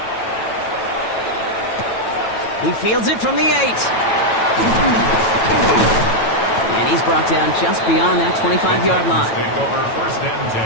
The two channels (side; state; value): right; late; 9.1 ms